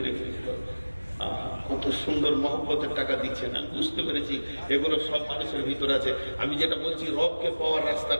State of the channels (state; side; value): inverted; both; correlation -1.00